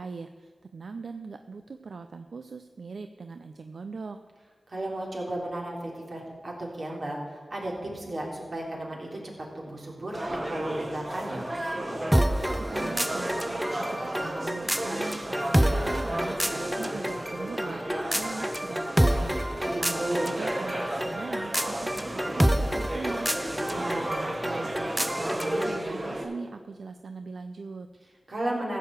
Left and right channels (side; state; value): both; normal; correlation 0.98